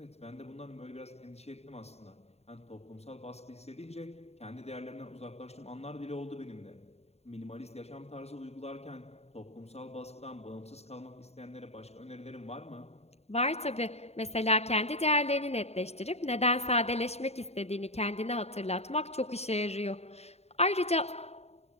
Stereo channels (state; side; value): late; right; 0.31 ms